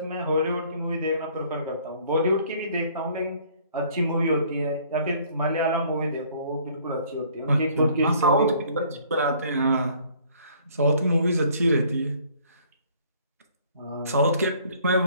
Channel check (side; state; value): both; inverted; correlation -0.58